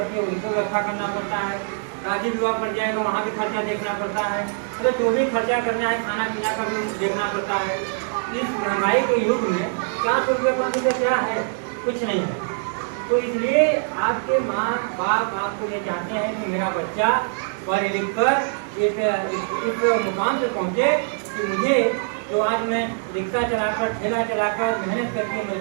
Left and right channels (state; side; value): silent; left; 61 dB below the other